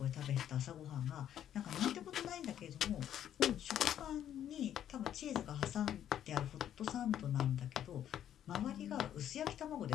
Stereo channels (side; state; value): right; quieter; 10.5 dB